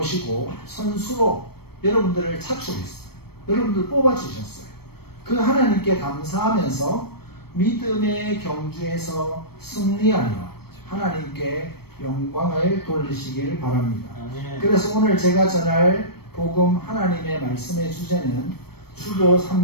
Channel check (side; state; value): right; late; 0.96 ms